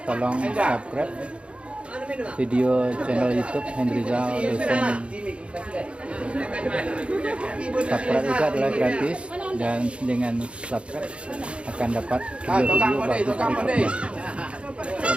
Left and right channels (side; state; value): left; late; 0.059 ms